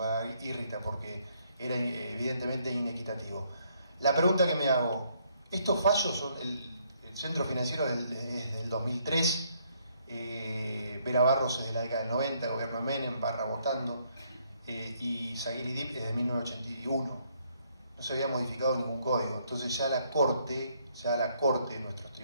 irrita porque era evidentemente inequitativo. La pregunta que me hago, estos fallos son el Centro Financiero desde el 2003, Vera Barros es de la década del 90, gobierno de Menem, Barra votando, y Zaguir y Dib es de 1981. No se había modificado ningún código. Entonces ya la Corte, nuestros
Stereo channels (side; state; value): both; inverted; correlation -0.70